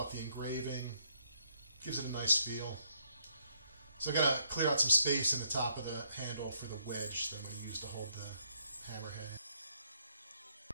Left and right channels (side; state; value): both; inverted; correlation -0.72